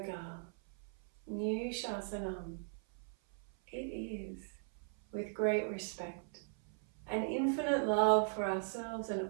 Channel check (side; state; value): left; silent; 52 dB below the other